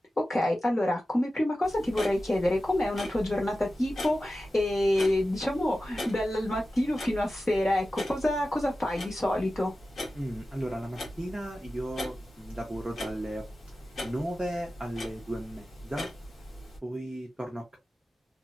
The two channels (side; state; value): both; normal; correlation 0.94